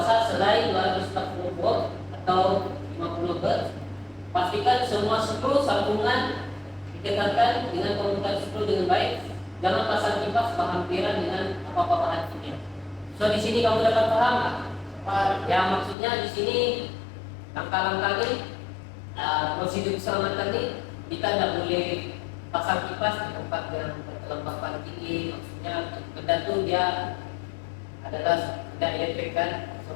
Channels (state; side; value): drops out; right; at 16.0 s